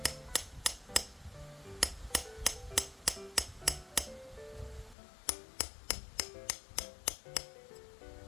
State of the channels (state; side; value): drops out; right; at 5.0 s